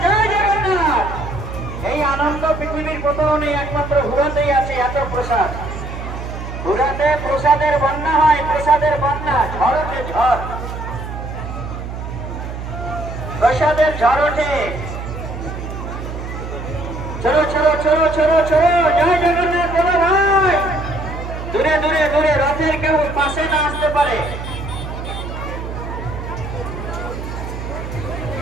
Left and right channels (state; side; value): noise; right; hum, 7 dB below the sound